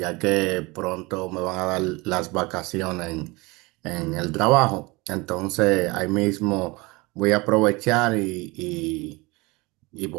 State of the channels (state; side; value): quieter; left; 24.3 dB